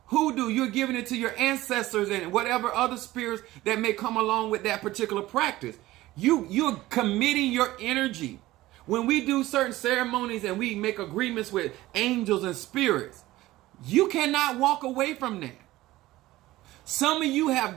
hoodoo, you're giving it to your ancestors and whatever other spirits that may come along with that particular practice. You're committing your energy. When we do certain ceremonies and we make agreements with angels and spirits, you cannot walk away from that. Some of you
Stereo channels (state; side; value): quieter; left; 17.0 dB